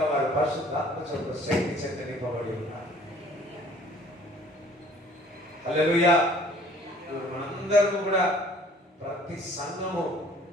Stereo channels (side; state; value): both; normal; correlation 0.54